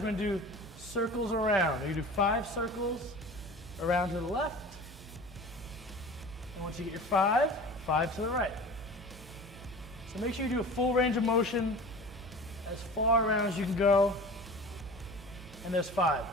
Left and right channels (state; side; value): normal; both; correlation 0.38